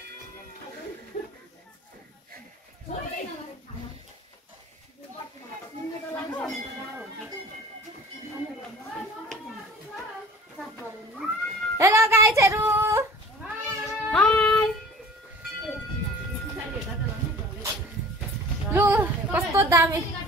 हेलो गाइजहरू, लु कस्तो दामी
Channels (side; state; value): both; normal; correlation 0.44